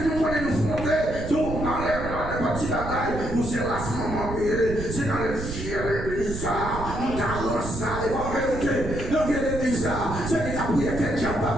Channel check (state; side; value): noise; right; rumble, 7 dB below the sound